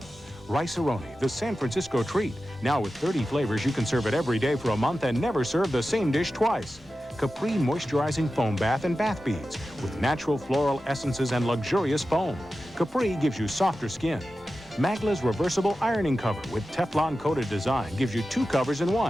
Rice-A-Roni, the San Francisco treat, now with 30 flavors you can serve it every day for a month and never serve the same dish twice. Capri moisturizing foam bath and bath beads with natural floral essences and luxurious foam. Capri gives you softer skin. Magla's reversible ironing cover with Teflon coated design gives you 2 covers in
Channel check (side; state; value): both; normal; correlation 0.93